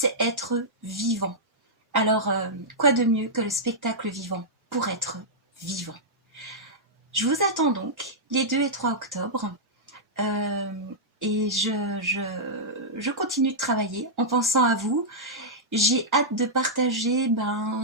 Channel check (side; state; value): both; normal; correlation -0.10